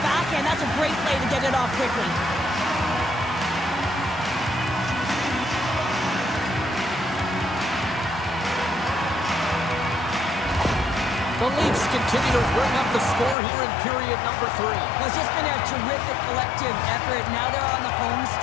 backhand. That's a great play to get it off quickly. The Leafs continue to bring up the score here in period number 3. Well, it's just been a terrific collective effort. Now they're on the home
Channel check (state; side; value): drops out; right; at 13.4 s